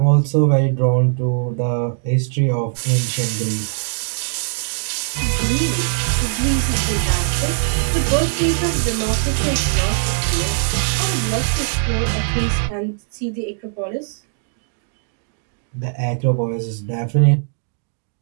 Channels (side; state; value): left; silent; digital silence